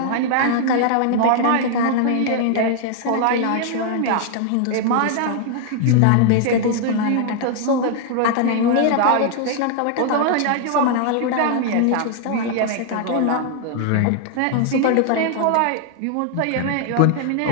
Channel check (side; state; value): both; different; correlation 0.00